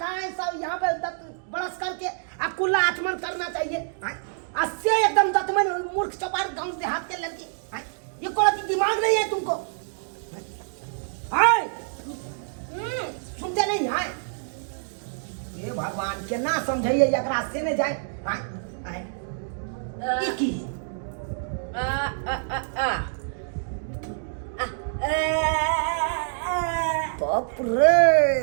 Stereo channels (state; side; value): silent; left; digital silence